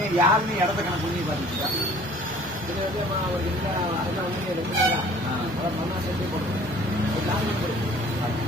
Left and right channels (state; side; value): normal; both; correlation 0.51